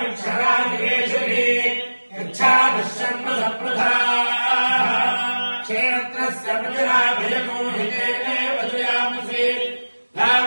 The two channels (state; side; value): inverted; both; correlation -1.00